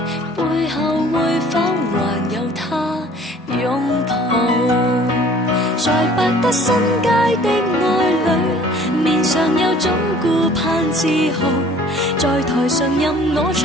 背後會否還有他擁抱？在百德新街的愛侶，面上有種顧盼自豪，在台上任我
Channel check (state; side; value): normal; both; correlation 0.52